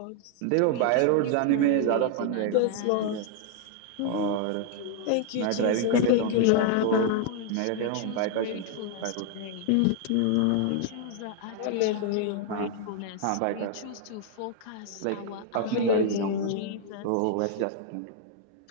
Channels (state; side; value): different; both; correlation 0.00